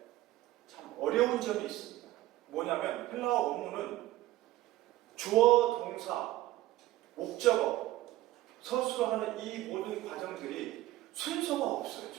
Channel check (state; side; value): quieter; left; 16.1 dB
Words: 참 어려운 점이 있습니다. 뭐냐면 헬라어 원문은 주어, 동사, 목적어, 서술하는 이 모든 과정들이 순서가 없어요.